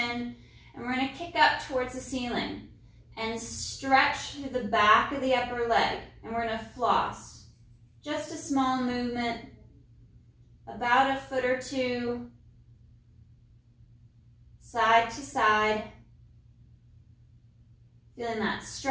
And we're going to kick up towards the ceiling. And stretch through the back of the upper leg. And we're going to floss. Just a small movement, about a foot or two, side to side. Feeling that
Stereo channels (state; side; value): identical; both; correlation 1.00